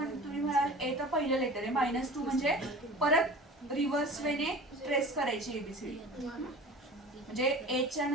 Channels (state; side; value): normal; both; correlation 0.39